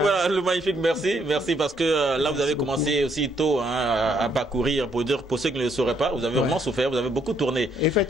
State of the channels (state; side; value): normal; both; correlation 0.71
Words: Le Magnifique, merci. Merci parce que là, vous avez commencé aussi tôt à parcourir. Pour ceux qui ne le sauraient pas, vous avez vraiment souffert, vous avez beaucoup tourné.